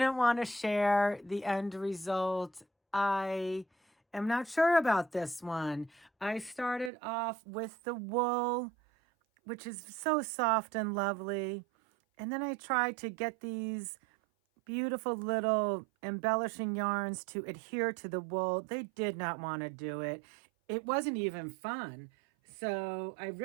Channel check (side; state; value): left; drops out; at 6.9 s